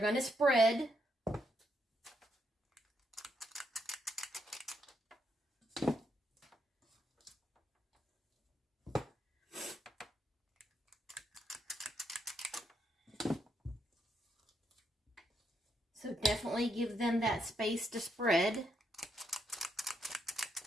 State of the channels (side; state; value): both; normal; correlation 0.77